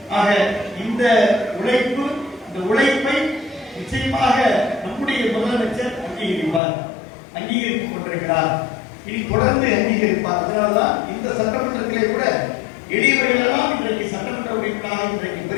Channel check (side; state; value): right; drops out; at 6.6 s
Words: ஆக இந்த உழைப்பை நிச்சயமாக நம்முடைய முதலமைச்சர் அங்கீகரித்துக் கொண்டிருக்கிறார். இனி தொடர்ந்து அங்கீகரிப்பார். அதனால்தான்